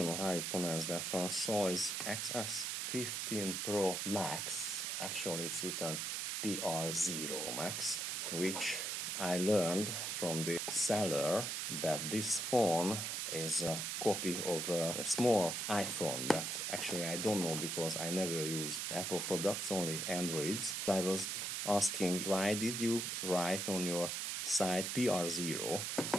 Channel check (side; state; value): right; noise; hiss, 1 dB below the sound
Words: know how you pronounce that one, Soyes XS15 Pro Max. Actually it's written PR0 Max, which I learned from the seller that this phone is a copy of a small iPhone that actually I don't know because I never used Apple products, only Androids. I was asking why did you write on your site PR0,